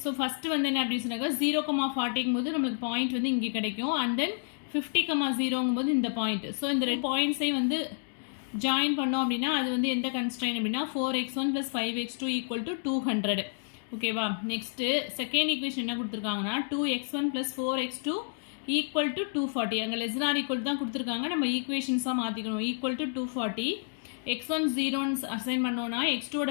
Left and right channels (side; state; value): right; silent; digital silence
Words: ஸோ ஃபஸ்ட்டு என்ன அப்படின்னு சொன்னாக்கா 0,40ங்கும் போது நம்மளுக்கு பாயிண்ட் இங்கே கிடைக்கும். அண்ட் தென் 50,0ங்கும் போது இந்த பாயிண்ட். ஸோ இந்த ரெண்டு பாயிண்ட்ஸையும் ஜாயின் பண்ணோம் அப்படின்னா அது எந்த கன்ஸ்ட்ரெயின் அப்படின்னா 4x1 plus 5x2 equal to 200. ஓகேவா. நெக்ஸ்ட்டு செகண்ட் ஈக்குவேஷன் என்ன கொடுத்துருக்காங்கன்னா 2x1 plus 4x2 equal to 240. அங்கே லெஸ் than or equal தான் கொடுத்துருக்காங்க, நம்ம ஈக்குவேஷன்ஸாக மாற்றிக்கணும். equal to 240. x1 0ன்னு அசைன் பண்ணோன்னா